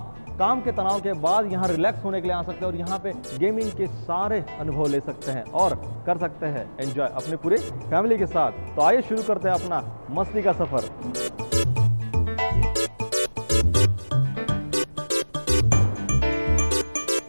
काम के तनाव के बाद यहाँ रिलैक्स होने के लिए आ सकते हैं और यहाँ पे गेमिंग के सारे अनुभव ले सकते हैं और कर सकते हैं एंजॉय अपने पूरे फैमिली के साथ। तो आइए शुरू करते हैं अपना मस्ती का सफर।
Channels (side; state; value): both; inverted; correlation -1.00